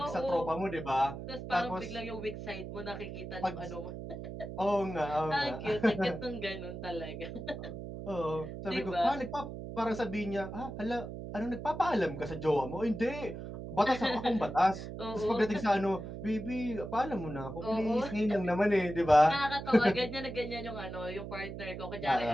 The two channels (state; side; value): noise; right; hum, 8 dB below the sound